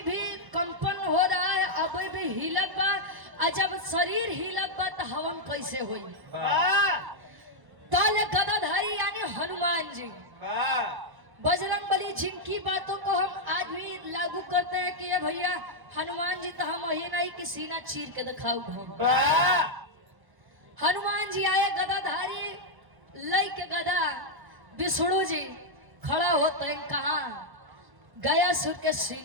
भी कंपन हो रहा है, अभी भी हिलत बा, और जब शरीर हिलत बा तो हवन कैसे होई? ताले गदाधारी यानी हनुमान जी, बजरंगबली, जिनकी बातों को हम आज भी लागू करते हैं कि ये भैया हनुमान जी तो हम यही नहीं कि सीना चीर के दिखाऊ हम। हनुमान जी आए गदाधारी लई के गदा, विष्णु जी खड़ा होते हैं कहाँ? गयासुर के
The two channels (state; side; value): late; left; 1.1 ms